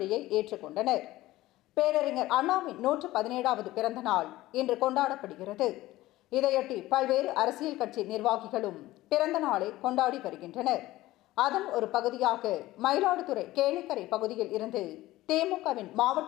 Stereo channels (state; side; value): quieter; right; 16.9 dB